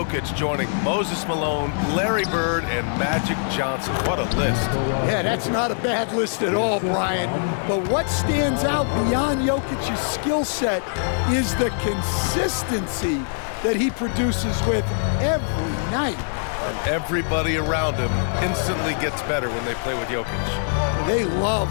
joining Moses Malone, Larry Bird, and Magic Johnson. What a list. Yeah, that's not a bad list at all, Brian. But what stands out beyond Jokic's skill set is the consistency that he produces with every night. And everybody around him instantly gets better when they play with Jokic. They love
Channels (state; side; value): silent; right; digital silence